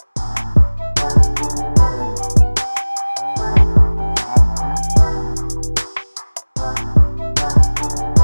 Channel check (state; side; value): inverted; both; correlation -1.00